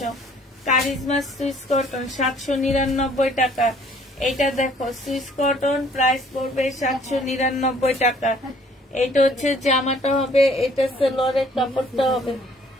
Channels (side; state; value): both; normal; correlation 0.58